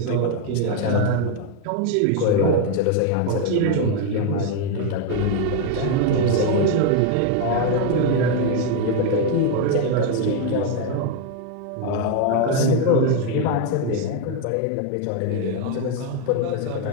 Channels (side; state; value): both; different; correlation 0.01